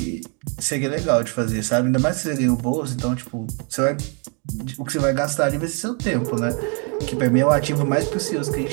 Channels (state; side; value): quieter; left; 37.9 dB